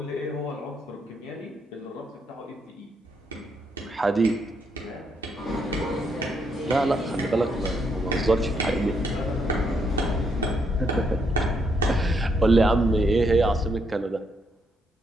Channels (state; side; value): normal; both; correlation 0.76